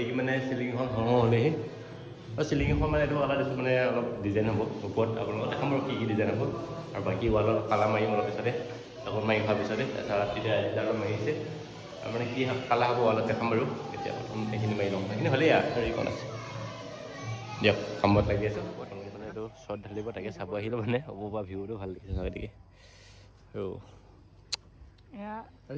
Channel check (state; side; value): identical; both; correlation 1.00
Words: মানে চিলিংখন হ'লেহি আৰু চিলিংখন মানে এইটো কালাৰ দিছোঁ মানে অলপ ডিজাইন হ'ব ওপৰত আপোনালোকক দেখাম আৰু কি ডিজাইন হ'ব আৰু বাকী ৱালত কালাৰ মাৰিম অলপ পিছতে আকৌ মাৰি হোৱাৰ পিছতে তাৰপিছত তেতিয়া এডালো মাৰিছে আৰু মানে কি কালাৰ হ'ব ৱালত দেখাম বাৰু এতিয়া প্ৰথম সেইখিনি মাৰি ল'ম সেইখিনি হ'লেই আৰু এইখন আছে দিয়ক কামত লাগি আছোঁ প্ৰথম মানে এইটো শ্বৰ্ট ঢালিব তাকে চাব আহিলোঁ মানে হ'ব পৰা ভিউটো ভাল লাগিছে গতিকে আৰু